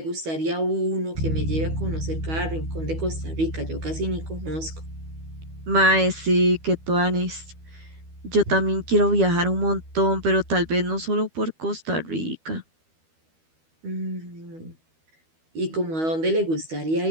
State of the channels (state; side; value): late; left; 12 ms